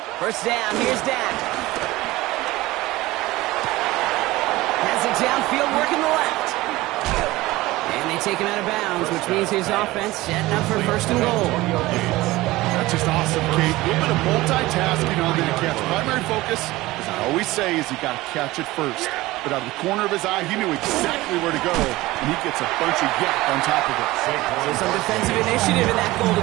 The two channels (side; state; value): left; quieter; 18.8 dB